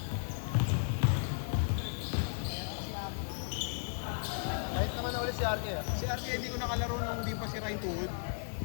Kahit naman na ulit si Arke ah. Si RK hindi ko nakalaro nung di pa sira yung tuhod.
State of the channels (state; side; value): silent; right; 55 dB below the other